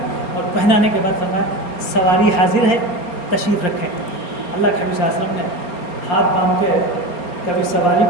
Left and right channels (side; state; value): right; late; 4.3 ms